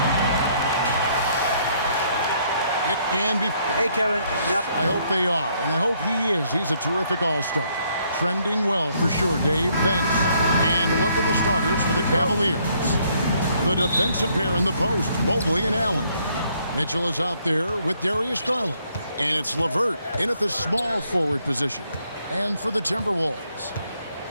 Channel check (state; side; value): inverted; both; correlation -0.69